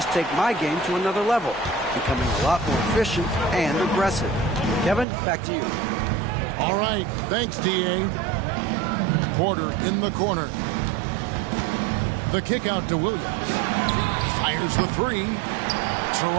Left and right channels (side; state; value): left; drops out; at 5.1 s